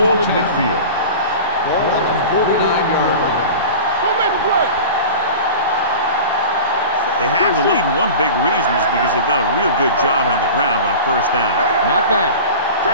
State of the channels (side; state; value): both; inverted; correlation -0.35